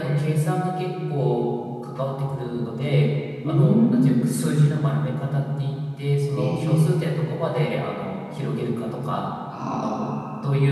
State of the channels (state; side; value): identical; both; correlation 1.00